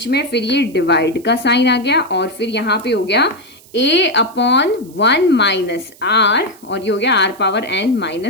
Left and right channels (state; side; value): noise; right; hiss, 25 dB below the sound